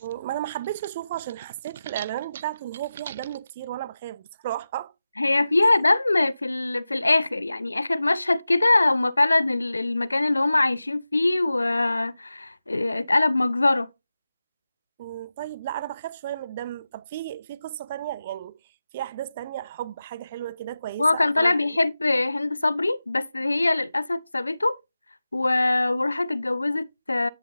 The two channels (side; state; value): both; inverted; correlation -0.94